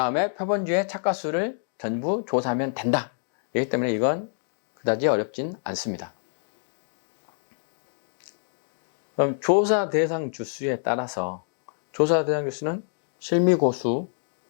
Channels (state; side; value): silent; right; digital silence